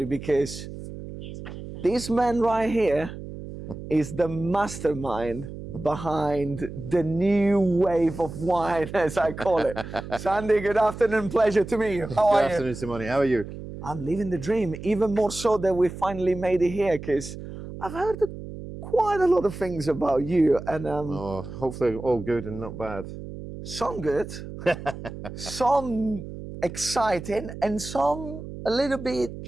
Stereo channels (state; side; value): noise; right; hum, 11 dB below the sound